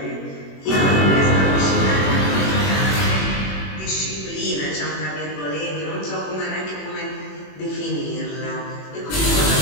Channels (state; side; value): late; right; 21 ms